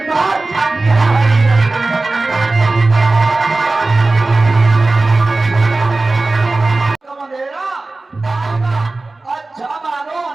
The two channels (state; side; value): quieter; left; 3.2 dB